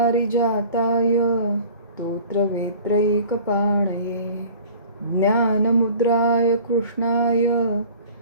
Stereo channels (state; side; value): inverted; both; correlation -0.46